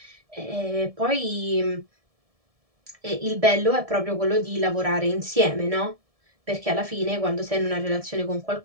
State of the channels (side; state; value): left; late; 1.7 ms